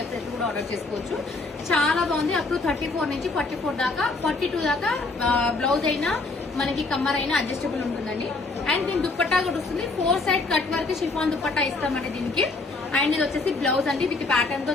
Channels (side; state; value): right; quieter; 3.5 dB